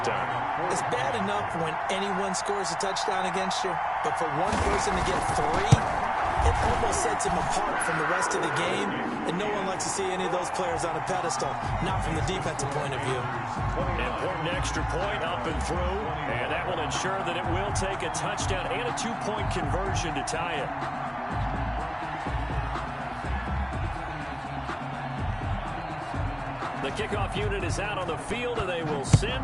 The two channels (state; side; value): identical; both; correlation 1.00